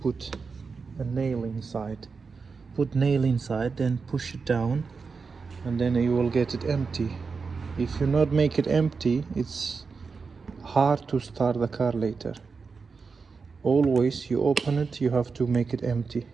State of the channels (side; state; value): left; quieter; 4.9 dB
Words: a nail inside. Put nail inside, then push it down, and then you will get it empty. If you not make it empty, it's hard to start the car later. Always you open it, you have to make it empty.